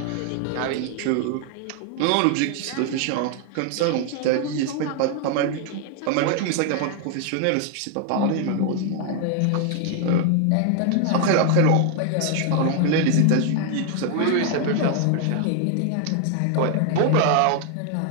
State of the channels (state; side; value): different; both; correlation 0.00